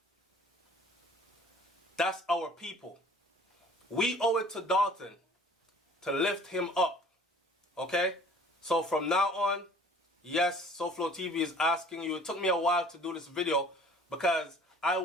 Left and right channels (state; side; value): normal; both; correlation 0.51